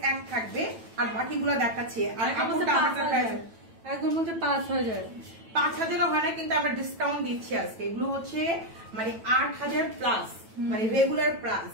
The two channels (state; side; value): late; left; 9.1 ms